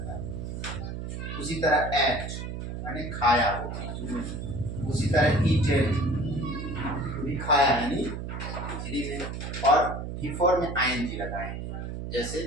है। उसी तरह एट माने खाया, उसी तरह ईटेड भी खाया यानी V3 में, और V4 में ING लगाएंगे जैसे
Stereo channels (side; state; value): right; noise; hum, 6 dB below the sound